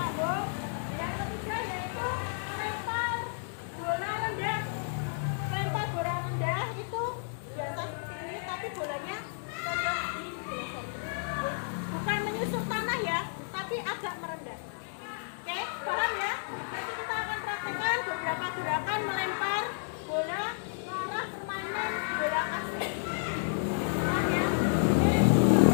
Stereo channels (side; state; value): right; silent; digital silence